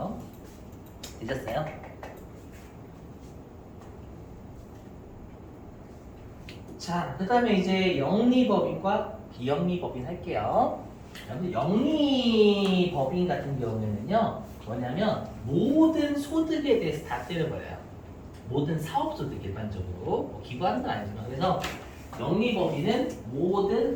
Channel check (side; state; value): both; identical; correlation 1.00